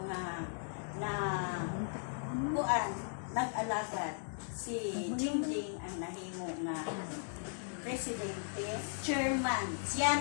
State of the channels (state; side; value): silent; right; digital silence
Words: nga na kuan nag-alagad si Jingjing ang nahimo nga presidente, chairman. Siya